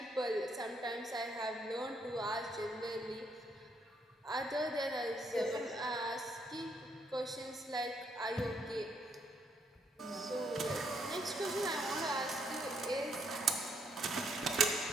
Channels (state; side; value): normal; both; correlation 0.73